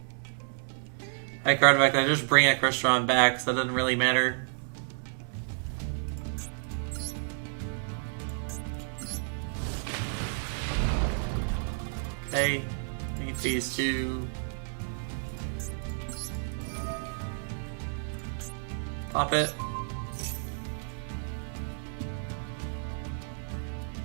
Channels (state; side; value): silent; left; digital silence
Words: I card back, I just bring a Crystron back, so that doesn't really matter. Okay, need these two. Pop it.